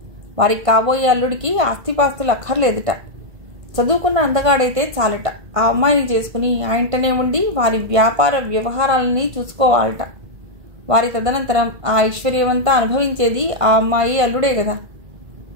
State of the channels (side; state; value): left; late; 1.5 ms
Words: వారికి కాబోయే అల్లుడికి ఆస్తిపాస్తులు అక్కర్లేదుట. చదువుకున్న అందగాడైతే చాలట. ఆ అమ్మాయిని చేసుకుని ఆ ఇంటనే ఉండి వారి వ్యాపార వ్యవహారాలని చూసుకోవాలట. వారి తదనంతరం ఆ ఐశ్వర్యమంతా అనుభవించేది ఆ అమ్మాయి అల్లుడే కదా.